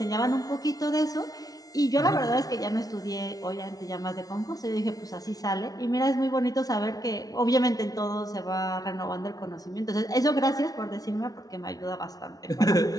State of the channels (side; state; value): right; late; 0.18 ms